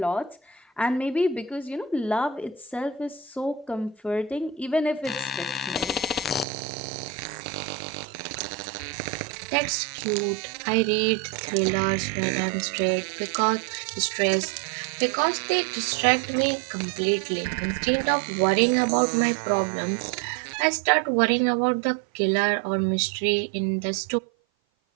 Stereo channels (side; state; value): left; drops out; at 6.5 s